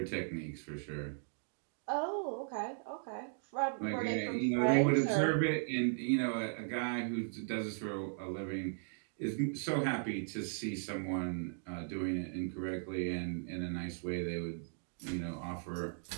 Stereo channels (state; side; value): silent; left; digital silence